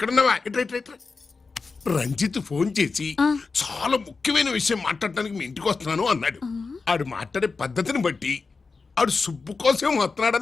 రంజిత్ ఫోన్ చేసి చాలా ముఖ్యమైన విషయం మాట్లాడటానికి మీ ఇంటికి వస్తున్నాను అన్నాడు. ఆడు మాట్లాడే పద్ధతిని బట్టి ఆడు సుబ్బు కోసం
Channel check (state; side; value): quieter; right; 4.4 dB